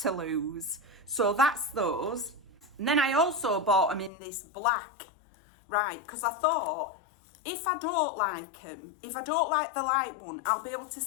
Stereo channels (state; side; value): drops out; right; at 4.1 s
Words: lose? So that's those. And then I also bought them in this black, right? Because I thought, if I don't like them, if I don't like the light one, I'll be able to